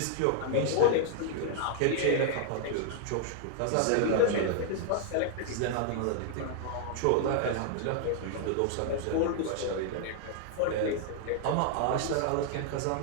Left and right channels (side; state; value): both; different; correlation -0.01